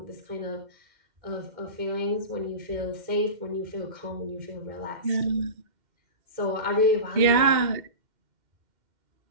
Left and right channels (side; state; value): left; late; 2.1 ms